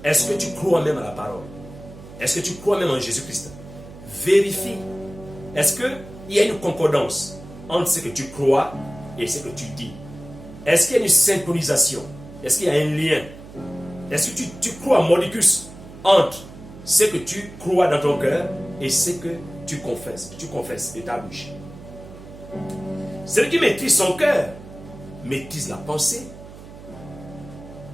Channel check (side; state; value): right; noise; hum, 17 dB below the sound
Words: Est-ce que tu crois même à la parole? Est-ce que tu crois même en Jésus-Christ? Vérifie. Est-ce qu'il y a une concordance entre ce que tu crois et ce que tu dis? Est-ce qu'il y a une synchronisation? Est-ce qu'il y a un lien? Est-ce que tu crois mordicus entre ce que tu crois dans ton cœur et ce que tu confesses de ta bouche? Celui qui maîtrise son cœur maîtrise la pensée.